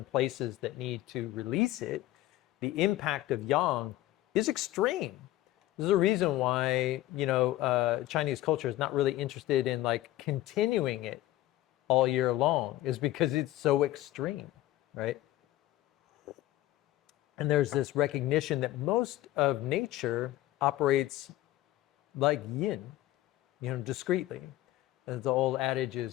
places that need to release it. The impact of yang is extreme. There's a reason why, Chinese culture is not really interested in like continuing it all year long, is because it's so extreme, right? And there's this recognition that most of nature operates like yin, discreetly. As the old adage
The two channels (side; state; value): right; quieter; 15.5 dB